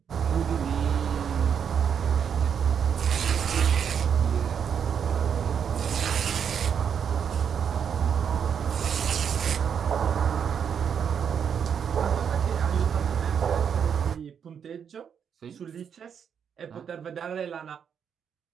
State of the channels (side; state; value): left; quieter; 7.6 dB